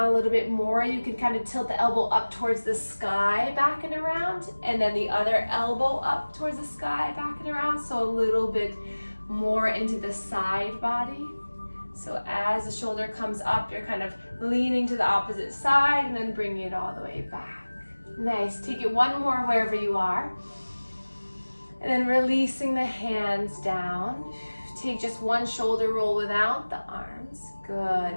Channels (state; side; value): inverted; both; correlation -1.00